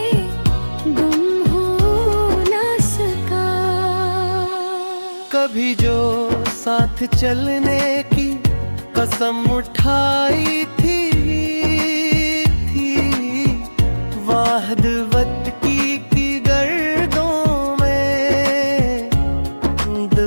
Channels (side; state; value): both; inverted; correlation -1.00